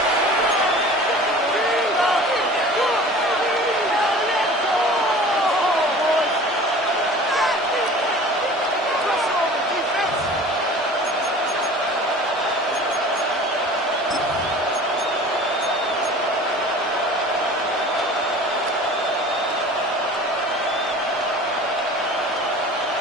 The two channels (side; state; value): both; normal; correlation 0.42